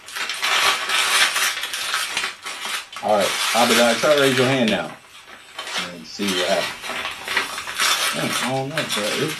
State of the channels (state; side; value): identical; both; correlation 1.00